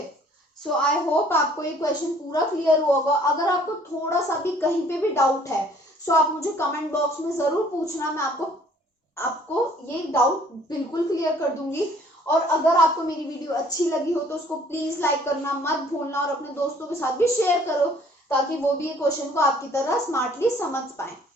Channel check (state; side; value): normal; both; correlation 0.57